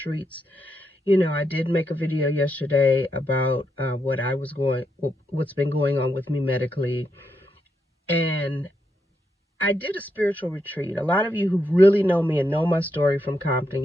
You know, I did make a video yesterday about what's been going on with me medically. And I did a spiritual retreat. A lot of you who really know me and know my story from Compton,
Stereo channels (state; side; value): normal; both; correlation 0.82